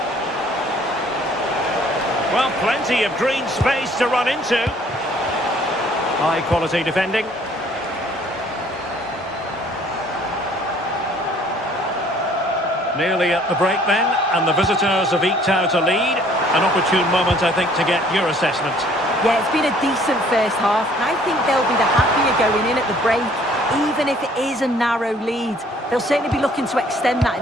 Well, plenty of green space to run into. High quality defending. Nearly at the break then, and the visitors have eked out a lead. An opportune moment, I think, to get your assessment. Yeah, it's been a decent first half, and I think they'll be the happier going in at the break, even if it is a narrow lead. They'll certainly be looking to extend that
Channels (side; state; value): both; normal; correlation 0.58